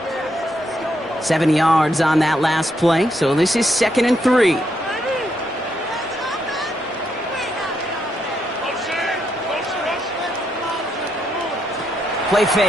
7 yards on that last play, so this is 2nd and 3. Play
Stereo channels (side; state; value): both; normal; correlation 0.78